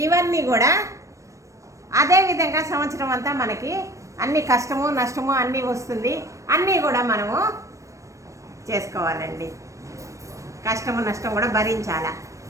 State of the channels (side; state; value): left; late; 0.15 ms